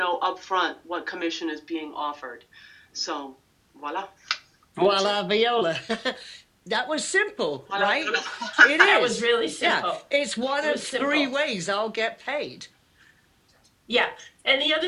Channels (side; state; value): both; identical; correlation 1.00